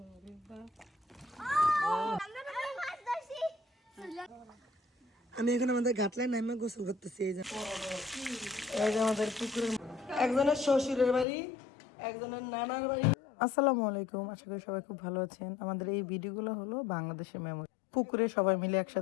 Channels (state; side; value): drops out; right; at 11.2 s